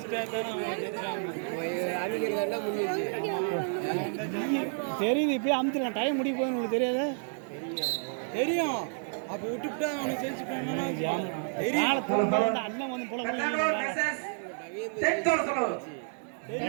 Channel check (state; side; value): silent; left; 58 dB below the other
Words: அவங்க முடிஞ்சிச்சு தெரியுது இப்பயே அமுத்துலாம் டைம் முடிய போகுது உங்களுக்கு தெரியாத தெரியும். அப்போ விட்டுவிட்டா அவனுக்கு ஜெயிச்சுட்டாங்கன்னா அண்ணன் வந்து போல